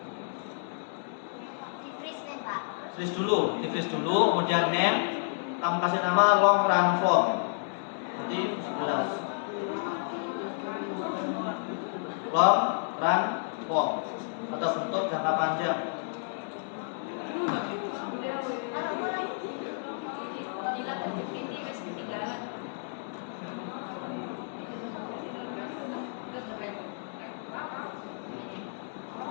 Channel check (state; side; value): silent; right; digital silence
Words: Di freeze dulu, kemudian name, kamu kasih nama long run form. Nanti 11. Long run form atau bentuk jangka panjang.